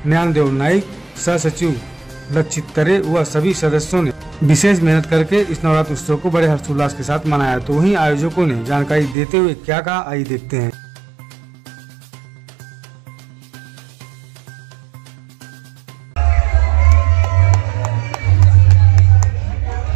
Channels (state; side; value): drops out; left; at 9.2 s